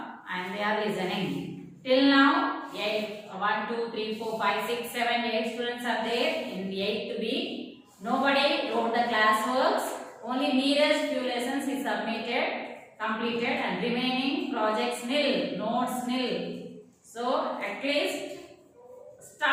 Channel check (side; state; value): both; identical; correlation 1.00